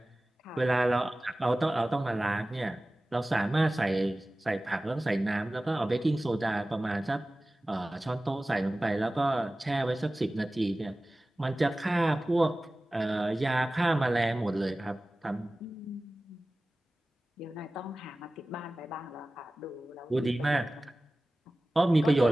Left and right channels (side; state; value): both; normal; correlation 0.97